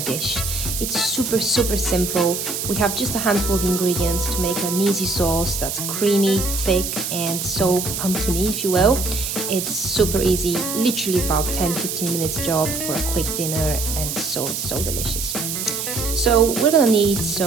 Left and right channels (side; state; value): right; noise; hiss, 4 dB below the sound